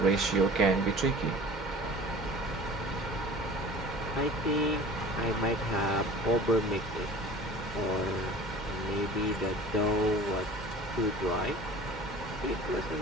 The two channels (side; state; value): both; normal; correlation 0.42